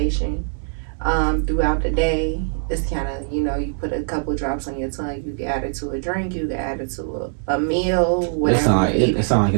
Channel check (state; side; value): silent; left; digital silence